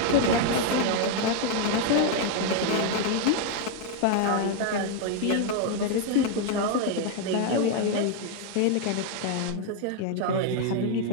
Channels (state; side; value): different; both; correlation 0.01